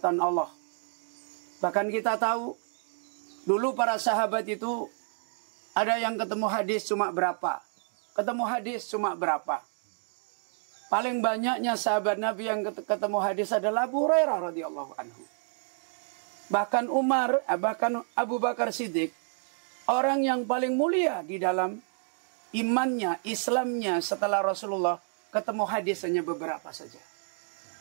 Allah. Bahkan kita tahu, dulu para sahabat itu ada yang ketemu hadis cuma berapa. Ketemu hadis cuma berapa. Paling banyaknya sahabat Nabi yang ketemu hadis adalah Abu Hurairah radhiyallahu anhu. Bahkan Umar, bahkan Abu Bakar Siddiq, orang yang paling mulia di dalam imannya, Islamnya setelah Rasulullah, ketemu hadis hanya beberapa saja.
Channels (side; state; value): left; silent; 58 dB below the other